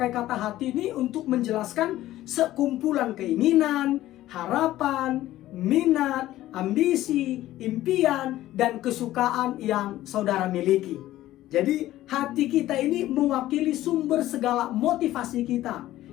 kata hati ini untuk menjelaskan sekumpulan keinginan, harapan, minat, ambisi, impian, dan kesukaan yang saudara miliki. Jadi hati kita ini mewakili sumber segala motivasi kita,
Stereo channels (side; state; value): right; quieter; 14.8 dB